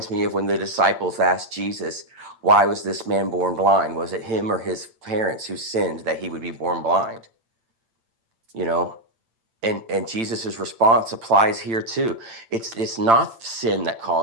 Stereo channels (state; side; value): late; left; 8.9 ms